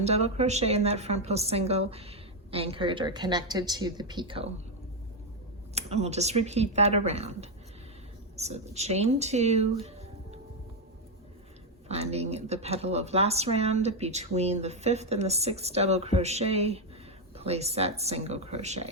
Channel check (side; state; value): both; normal; correlation 0.04